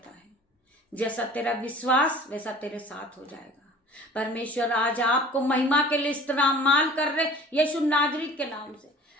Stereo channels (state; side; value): normal; both; correlation 0.46